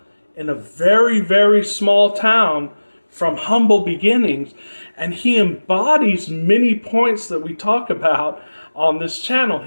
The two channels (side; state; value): both; inverted; correlation -1.00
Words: in a very, very small town from humble beginnings, and he embodies many points that we talk about on this channel.